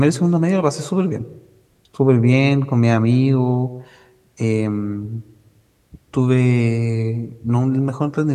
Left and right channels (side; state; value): both; identical; correlation 1.00